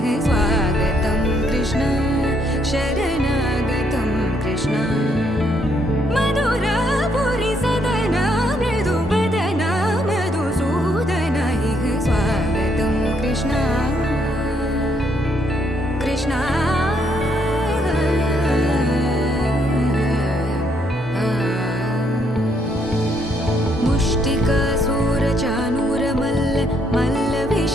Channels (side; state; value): both; normal; correlation 0.72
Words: स्वागतं कृष्ण शरणागतं कृष्ण मधुरापुरी सदन मृदुवदन मधुसूदन इह स्वागतं कृष्ण कृष्ण